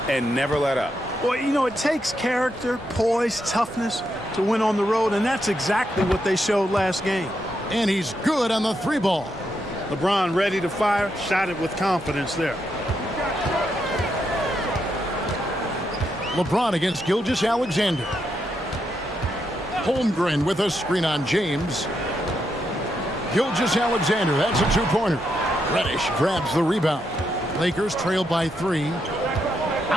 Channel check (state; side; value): normal; both; correlation 0.81